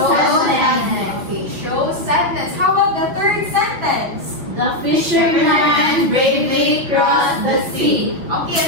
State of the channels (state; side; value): late; left; 6.2 ms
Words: Okay, show sadness. How about the third sentence? The fisherman bravely crossed the sea. Okay,